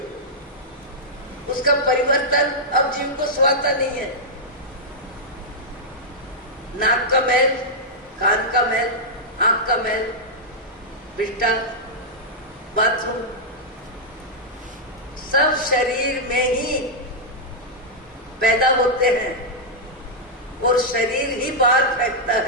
उसका परिवर्तन अब जीव को स्वाता नहीं है। नाक का मैल, कान का मैल, आंख का मैल, बिस्टा, बाथरूम, सब शरीर में ही पैदा होते हैं और शरीर ही बाहर फेंकता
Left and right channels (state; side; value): normal; both; correlation -0.07